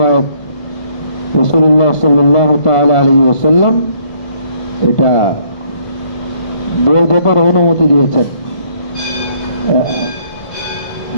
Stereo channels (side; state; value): right; late; 1.5 ms